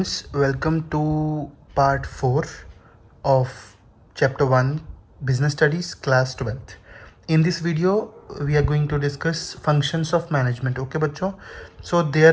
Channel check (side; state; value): both; identical; correlation 1.00